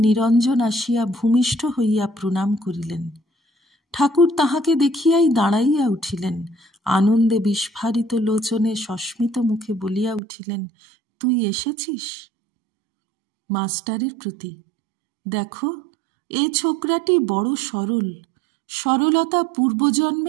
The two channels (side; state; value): left; drops out; at 10.2 s